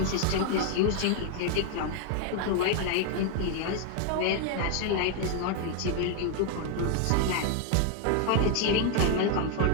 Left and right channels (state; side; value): different; both; correlation 0.01